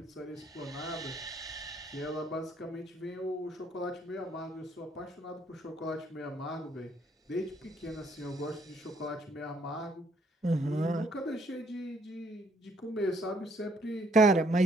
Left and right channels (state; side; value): normal; both; correlation 0.67